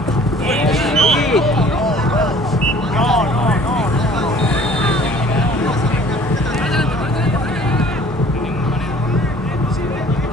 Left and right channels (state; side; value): normal; both; correlation 0.51